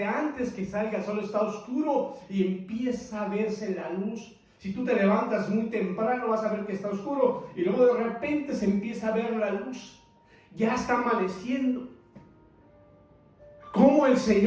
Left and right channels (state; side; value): identical; both; correlation 1.00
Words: antes que salga el sol está oscuro y empieza a verse la luz. Si tú te levantas muy temprano vas a ver que está oscuro y luego de repente se empieza a ver la luz. Ya está amaneciendo. Como el